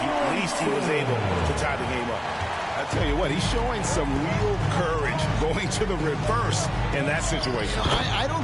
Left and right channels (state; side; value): identical; both; correlation 1.00